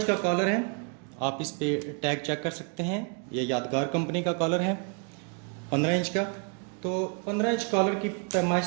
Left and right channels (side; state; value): left; quieter; 36.8 dB